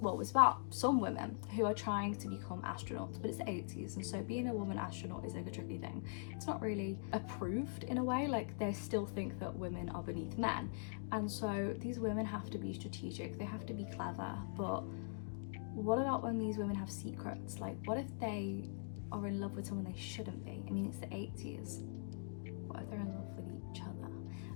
it's about some women who are trying to become astronauts, but it's the 80s, and so being a woman astronaut is like a tricky thing. It's not really approved in a way, like they still think that women are beneath men, and so these women have to be strategic, they have to be clever, but what about when these women have secrets? Like, what if they are in love with someone they shouldn't be? I mean, it's the 80s. What if they're in love with each other?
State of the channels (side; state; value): right; silent; digital silence